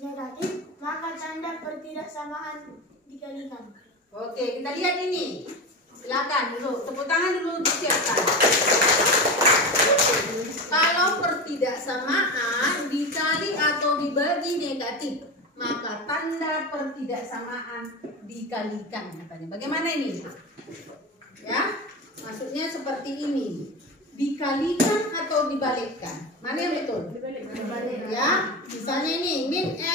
negatif, maka tanda pertidaksamaan dikalikan. Oke, kita lihat ini. Silakan dulu, tepuk tangan dulu disiapkan. Kalau pertidaksamaan dikali atau dibagi negatif, maka tanda pertidaksamaan dikalikan katanya. Bagaimana ini? Ya, maksudnya seperti ini. Dikalikan atau dibalikkan? Mana yang betul? Ya, misalnya ini min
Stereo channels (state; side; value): normal; both; correlation 0.23